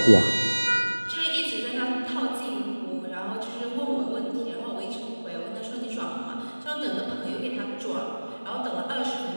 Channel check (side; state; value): both; inverted; correlation -1.00